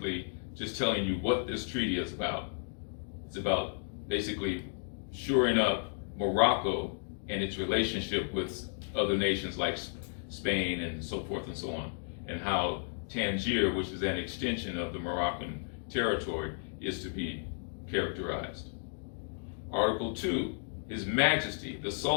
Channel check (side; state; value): right; silent; digital silence